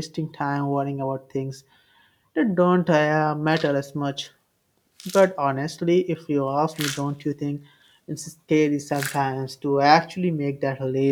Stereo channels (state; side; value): identical; both; correlation 1.00